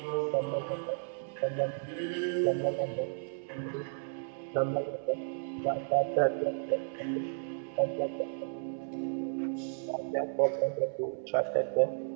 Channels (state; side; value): silent; left; digital silence